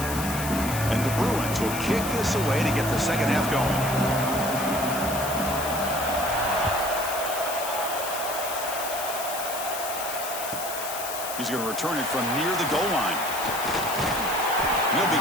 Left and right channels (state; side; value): noise; left; hiss, 7 dB below the sound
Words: And the Bruins will kick this away to get the second half going. He's going to return it from near the goal line. He'll